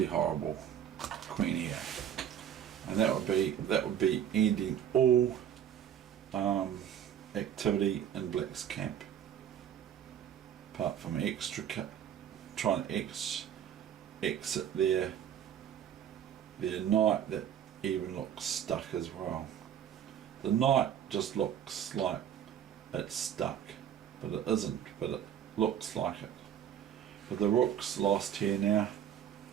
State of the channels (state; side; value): quieter; left; 9.6 dB